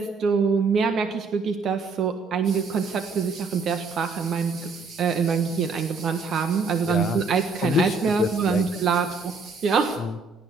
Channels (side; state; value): left; quieter; 4.3 dB